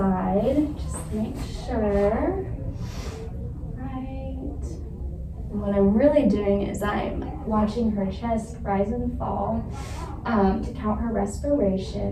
just to make sure. Right. And what I'm really doing is I'm watching her chest rise and fall. To count her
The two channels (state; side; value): identical; both; correlation 1.00